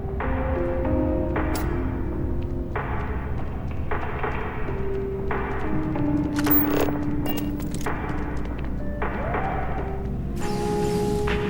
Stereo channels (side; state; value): both; identical; correlation 1.00